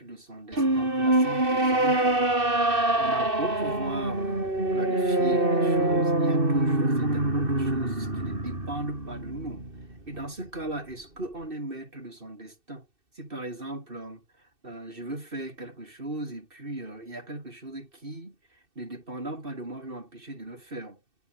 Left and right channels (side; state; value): left; late; 2.6 ms